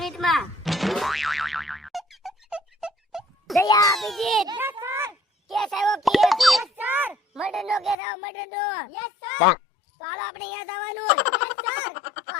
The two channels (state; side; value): drops out; right; at 8.0 s